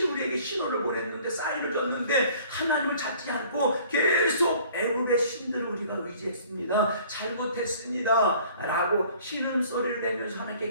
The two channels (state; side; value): inverted; both; correlation -0.53